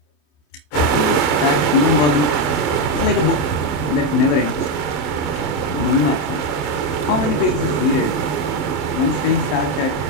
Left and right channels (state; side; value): late; right; 27 ms